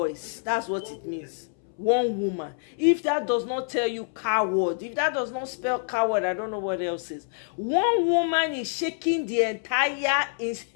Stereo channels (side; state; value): right; silent; 60 dB below the other